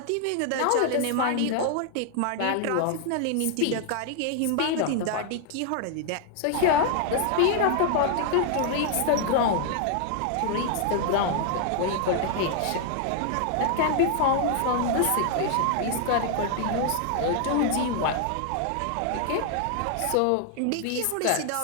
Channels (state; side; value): different; both; correlation 0.00